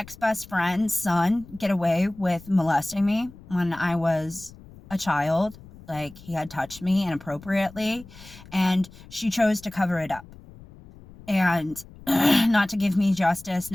friend's son get away with molesting me when I was a child. Like, he had touched me inappropriately, and she chose to cover it up and not to give me justice,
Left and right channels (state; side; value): noise; left; rumble, 20 dB below the sound